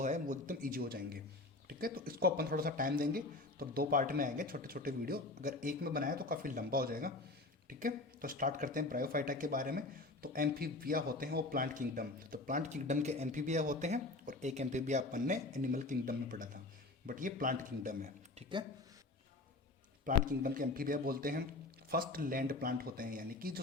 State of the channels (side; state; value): right; quieter; 3.0 dB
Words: है वो एकदम ईजी हो जाएंगे। ठीक है, तो इसको अपन थोड़ा सा टाइम देंगे, तो दो पार्ट में आएंगे छोटे छोटे वीडियो। अगर एक में बनाया तो काफ़ी लंबा हो जाएगा। ठीक है, तो स्टार्ट करते हैं ब्रायोफाइटा के बारे में। तो एम्फीबिया होते हैं वो प्लांट किंगडम, तो प्लांट किंगडम के एम्फीबिया होते हैं और एक एम्फीबिया अपन ने एनिमल किंगडम में पढ़ा था, बट ये प्लांट किंगडम है। ठीक है, प्लांट किंगडम के एम्फीबिया बोलते हैं फर्स्ट लैंड प्लांट होते हैं, यानी कि जो